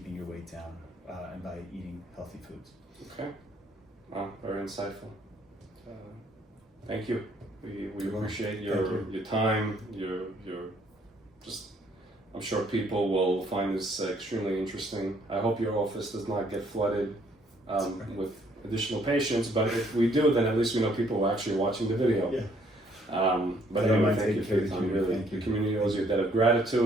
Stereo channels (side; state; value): both; normal; correlation 0.65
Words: your weight down and by eating healthy foods. Okay. Wow, very insightful. Thank you. We appreciate your time. Your just. I'm sure people will find this extremely interesting. I hope your office does not get flooded with additional patients, but if we do, then at least we know people are actually watching the video. Yeah. But anyway, thank you for your time. Really, the community owes you a debt of